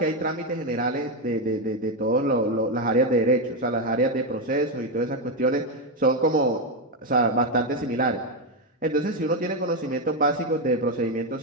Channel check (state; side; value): normal; both; correlation 0.07